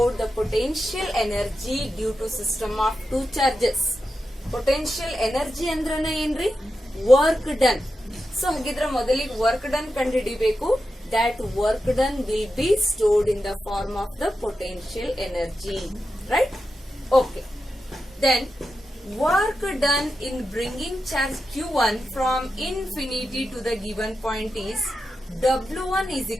the potential energy due to system of 2 charges. Potential energy ಅಂದ್ರನ ಏನ್ರಿ? Work done. So ಹಾಗಿದ್ರೆ ಮೊದಲಿಗೆ work done ಕಂಡುಹಿಡಿಬೇಕು. That work done will be stored in the form of the potential energy. Right? Okay. Then work done in bringing charge Q1 from infinity to the given point is W1 is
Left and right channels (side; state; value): both; normal; correlation 0.89